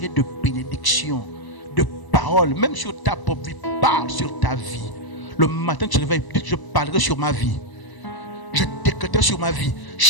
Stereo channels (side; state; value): right; late; 1.0 ms